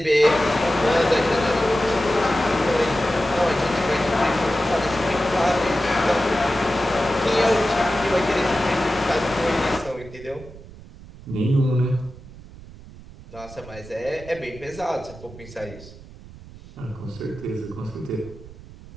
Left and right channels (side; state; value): right; noise; rumble, 18 dB below the sound